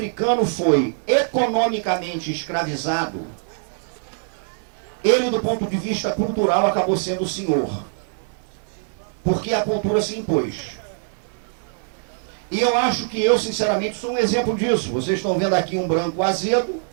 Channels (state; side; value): silent; left; digital silence